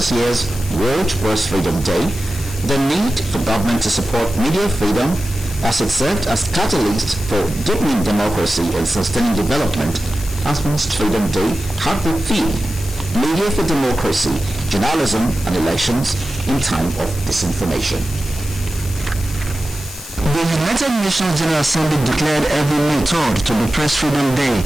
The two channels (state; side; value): noise; left; hiss, 13 dB below the sound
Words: year's World Press Freedom Day, the need for government to support media freedom as it served as catalyst for deepening democracy and sustaining development has been Freedom Day had the theme Media for Democracy, Journalism and Elections in Time of Disinformation. The United Nations General Assembly declared every May 3rd to be Press Freedom Day